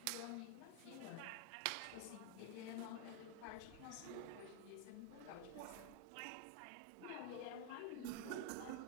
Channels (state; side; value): different; both; correlation 0.00